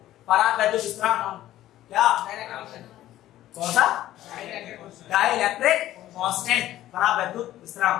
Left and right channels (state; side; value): quieter; right; 13.9 dB